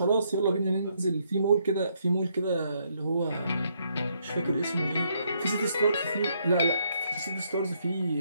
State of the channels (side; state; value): both; inverted; correlation -0.73